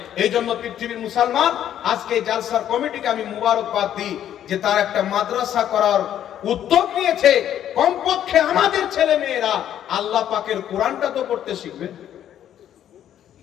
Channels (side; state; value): right; quieter; 10.6 dB